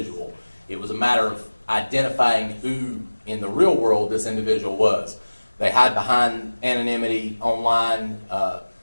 It was a matter of identifying who in the real world this individual was. They hide behind anonymity online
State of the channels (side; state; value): both; inverted; correlation -1.00